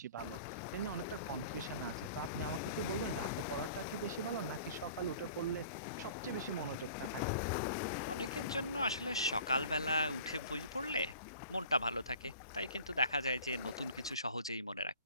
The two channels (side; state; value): both; inverted; correlation -0.46